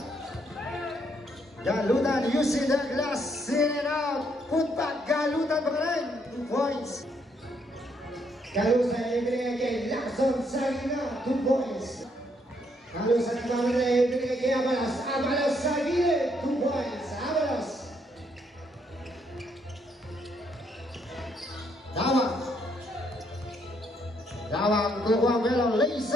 Galutan using the glass, in and out. Put back, Galutan pa rin, 2 points. Galutan ibigay kay Lacson sa gitna, 2 points. Galutan ibigay kay Avalos. Avalos sa gilid, 2 points. Avalos. Dawang kukuha Melo,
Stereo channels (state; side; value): normal; both; correlation 0.72